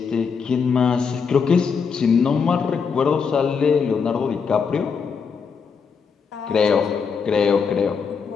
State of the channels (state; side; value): quieter; right; 5.9 dB